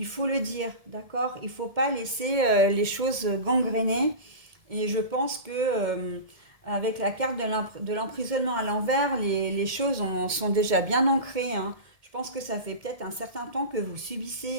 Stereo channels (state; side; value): late; left; 1.7 ms